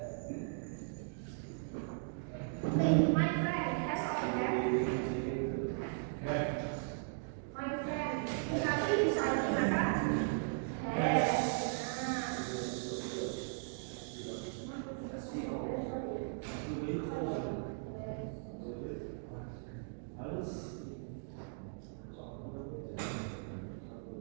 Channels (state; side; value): silent; left; digital silence